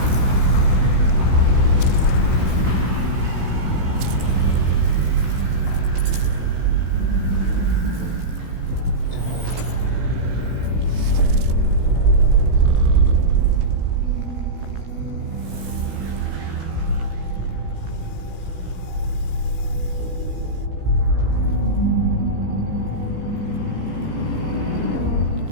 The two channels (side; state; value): left; late; 16 ms